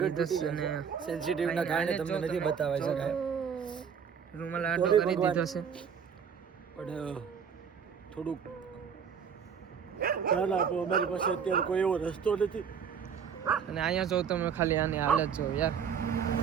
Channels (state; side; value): quieter; left; 7.1 dB